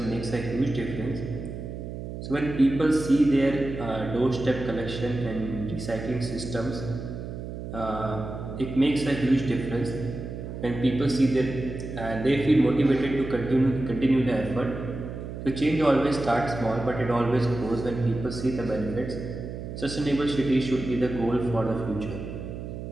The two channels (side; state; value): right; noise; hum, 8 dB below the sound